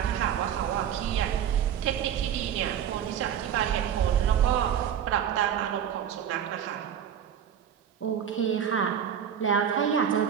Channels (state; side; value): quieter; left; 9.1 dB